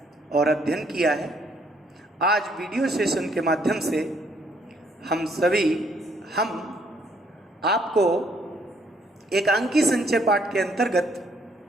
और अध्ययन किया है। आज वीडियो सेशन के माध्यम से हम आपको एकांकी संचय पाठ के अंतर्गत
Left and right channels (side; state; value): both; normal; correlation 0.68